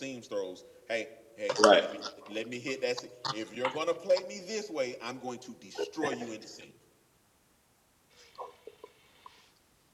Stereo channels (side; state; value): both; identical; correlation 1.00